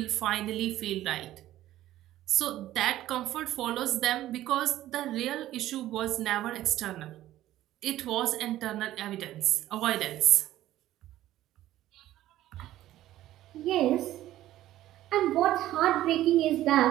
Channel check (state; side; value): quieter; left; 14.1 dB